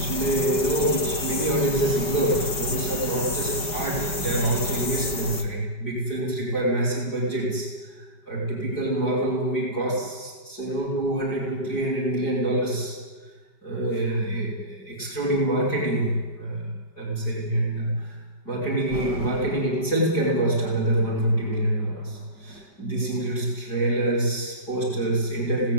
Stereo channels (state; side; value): late; right; 5.4 ms